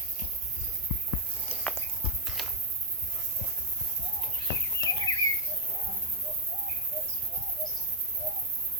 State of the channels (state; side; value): normal; both; correlation -0.04